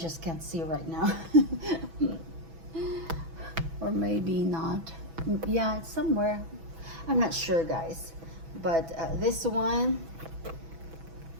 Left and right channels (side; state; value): left; late; 6.1 ms